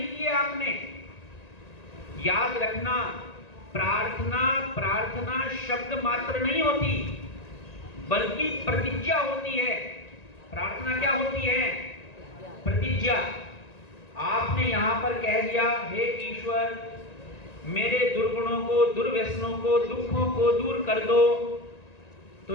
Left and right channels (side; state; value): right; late; 1.9 ms